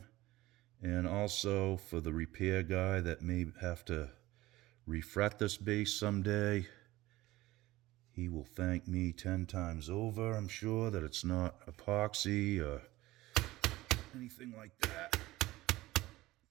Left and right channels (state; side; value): quieter; left; 17.9 dB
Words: and also for the repair guy that may have to refret this bass someday. He will thank me 10 times over, I'm sure, that it's not epoxy or anything like that.